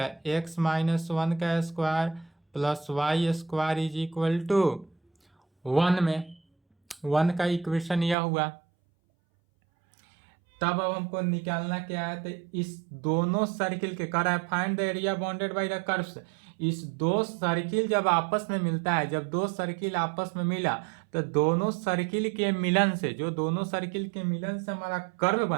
x माइनस 1 का square plus y square is equal to 1 में 1 का इक्वेशन यह हुआ। तब अब हमको निकालना क्या है, तो इस दोनों सर्किल के कर find the area bounded by the curves, इस दो सर्किल जब आपस में मिलता है, जब दो सर्किल आपस में मिला तो दोनों सर्किल के मिलन से, जो दोनों सर्किल के मिलन से हमारा कर्व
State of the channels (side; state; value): left; drops out; at 8.2 s